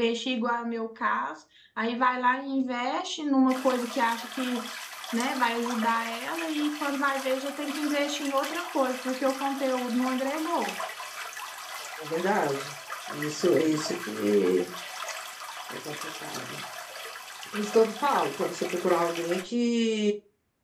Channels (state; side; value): identical; both; correlation 1.00